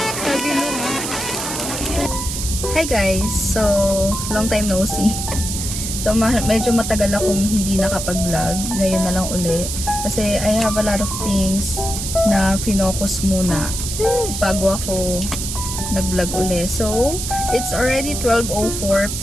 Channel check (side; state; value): right; noise; hiss, 5 dB below the sound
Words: Stabi nga. Hi guys! So, long time no see. So, medyo matagal akong hindi nakapag-vlog. Ngayon na lang uli. Kasi I have a lot of things na finocus muna bago ako nag-vlog uli. So, it's already 12:04